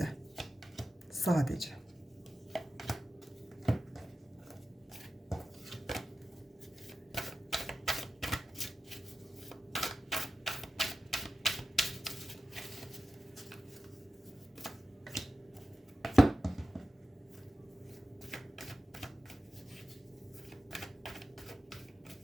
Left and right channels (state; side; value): normal; both; correlation 0.93